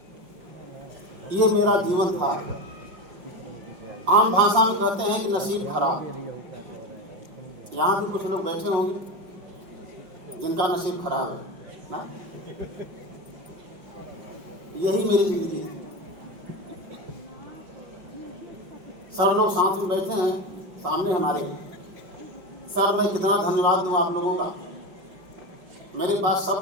ये मेरा जीवन था। आम भाषा में कहते हैं कि नसीब खराब। यहाँ भी कुछ लोग बैठे होंगे जिनका नसीब खराब है ना। यही मेरी जिंदगी थी। सर लोग साथ में बैठे हैं सामने हमारे। सर, मैं कितना धन्यवाद दूँ आप लोगों का, मेरे पास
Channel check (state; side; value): late; left; 5.6 ms